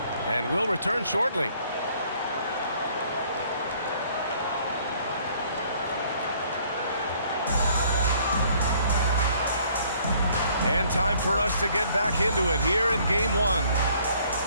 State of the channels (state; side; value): inverted; both; correlation -0.61